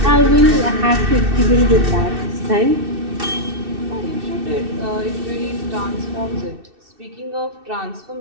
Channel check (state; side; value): late; left; 2.6 ms